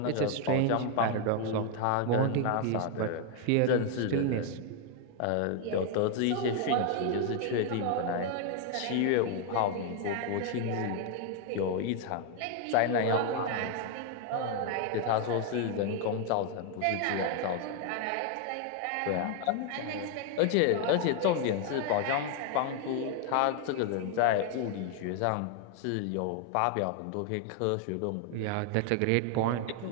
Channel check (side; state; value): both; different; correlation 0.01